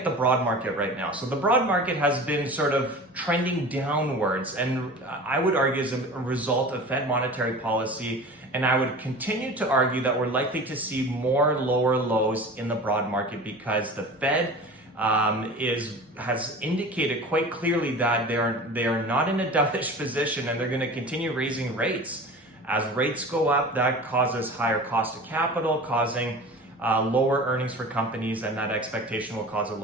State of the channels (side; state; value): both; normal; correlation 0.37